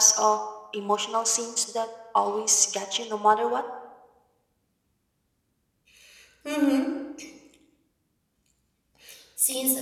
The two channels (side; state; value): both; identical; correlation 1.00